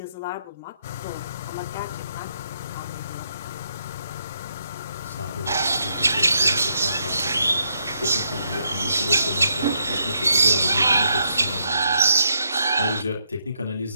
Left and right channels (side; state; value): both; inverted; correlation -0.76